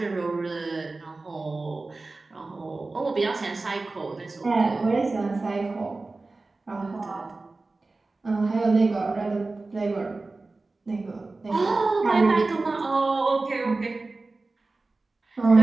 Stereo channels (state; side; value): quieter; left; 3.4 dB